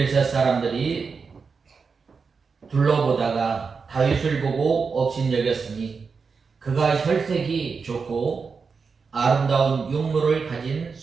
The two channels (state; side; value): quieter; left; 5.2 dB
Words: 사람들이 둘러보다가 다윗을 보고 업신여겼으니 그가 혈색이 좋고 아름다운 용모를 가진